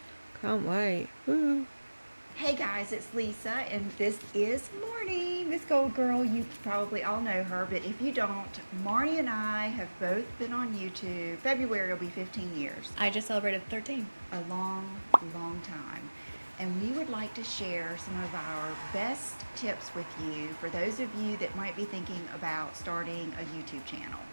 Can't wait. Woo. Hey guys, it's Lisa, and this is Marnie, MsGoldgirl. You probably all know her, but if you don't, Marnie and I have both been on YouTube. February will be 15 years. I just celebrated 13. A long, long time. And we would like to share some of our best tips with you for those of you that might be thinking about starting a YouTube channel.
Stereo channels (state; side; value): inverted; both; correlation -1.00